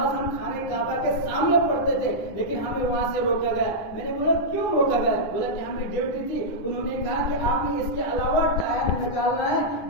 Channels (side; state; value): right; late; 9.9 ms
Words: ہم خانے کعبہ کے سامنے پڑھتے تھے لیکن ہمیں وہاں سے روکا گیا. میں نے بولا کیوں روکا گیا؟ بولا کہ ہمیں ڈیوٹی تھی. انہوں نے کہا کہ آپ نے اس کے علاوہ ٹائم نکالنا ہے